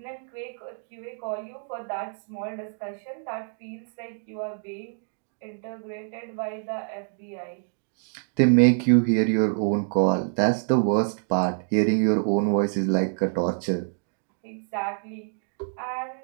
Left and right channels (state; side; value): silent; left; 60 dB below the other